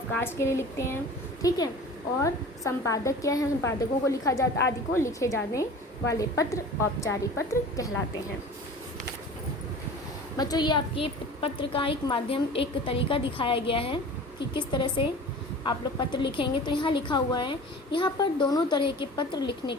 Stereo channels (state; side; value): normal; both; correlation 0.40